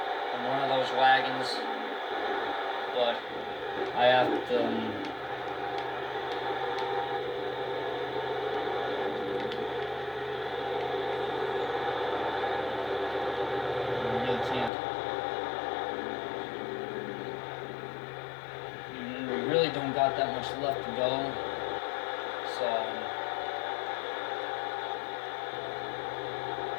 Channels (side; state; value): right; drops out; at 14.7 s